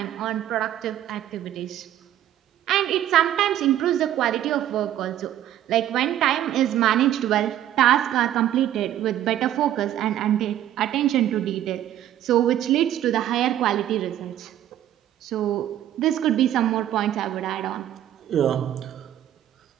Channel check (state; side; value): quieter; left; 12.0 dB